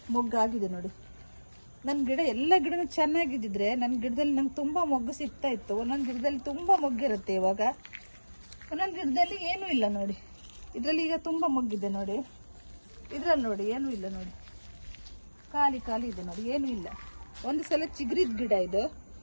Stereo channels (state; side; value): inverted; both; correlation -1.00